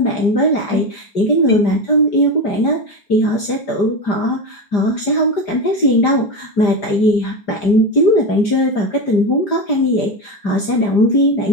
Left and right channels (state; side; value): late; right; 4.9 ms